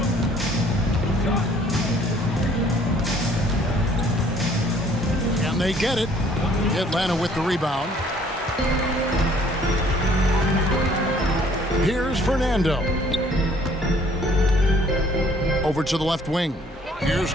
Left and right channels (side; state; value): both; normal; correlation 0.59